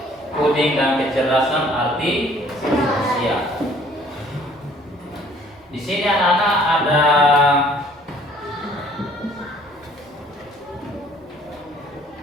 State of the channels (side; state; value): both; normal; correlation 0.57